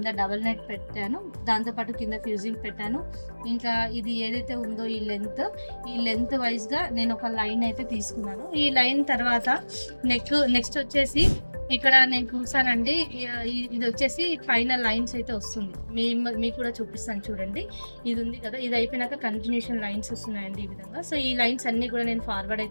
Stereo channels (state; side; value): inverted; both; correlation -1.00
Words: డబల్ నెట్ పెట్టాను, దాంతోపాటు కింద ఫ్యూజింగ్ పెట్టాను. ఇంకా ఇది ఏదైతే ఉందో ఈ లెంత్ వైజ్గా నేను ఒక లైన్ అయితే తీసుకున్నాను. ఈ లైన్ తర్వాత నెక్స్ట్ వచ్చేసి ఇక్కడ నేను చూసానండి, ఇది వచ్చేసి పైన లైన్స్ అయితే వస్తుంది. మీకు కూడా చూపిస్తాను చూడండి. ఇది ఉంది కదా, ఇది అయిపోయినాక కంటిన్యూషన్ లైన్స్ వస్తున్నాయండి ఈ విధంగా. సో ఈ లైన్స్ అన్ని కూడా నేను ఫార్వర్డ్